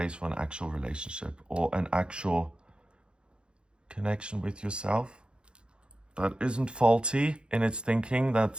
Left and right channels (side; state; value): left; late; 0.053 ms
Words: for an actual relationship or an actual connection with yourself that isn't faulty in its thinking,